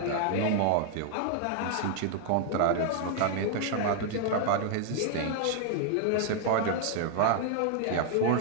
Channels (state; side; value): different; both; correlation 0.00